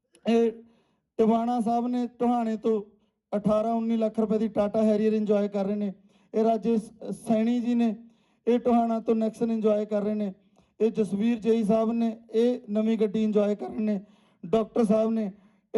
ਇਹ ਟਿਵਾਣਾ ਸਾਹਿਬ ਨੇ, ਟੋਹਾਣੇ ਤੋਂ 18-19 ਲੱਖ ਰੁਪਏ ਦੀ ਟਾਟਾ ਹੈਰੀਅਰ ਇੰਜੋਏ ਕਰ ਰਹੇ ਨੇ। ਇਹ ਰਾਜੇਸ਼ ਸੈਣੀ ਜੀ ਨੇ, ਇਹ ਟੋਹਾਣਾ ਤੋਂ ਨੈਕਸਨ ਇੰਜੋਏ ਕਰ ਰਹੇ ਨੇ। ਇਹ ਜਸਵੀਰ ਜਈ ਸਾਹਿਬ ਨੇ, ਇਹ ਨਵੀਂ ਗੱਡੀ ਇੰਜੋਏ ਕਰ ਰਹੇ ਨੇ। ਡਾਕਟਰ ਸਾਹਿਬ ਨੇ,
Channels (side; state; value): both; identical; correlation 1.00